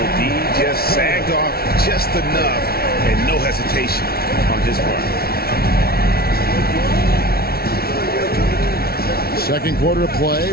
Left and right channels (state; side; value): late; right; 0.44 ms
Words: D just sagged off just enough and no hesitation on his part. Second quarter of play